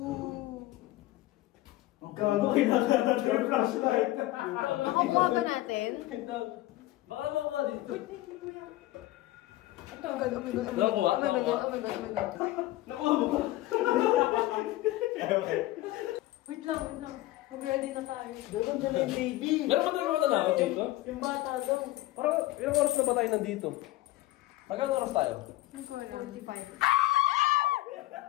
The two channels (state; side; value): quieter; right; 16.9 dB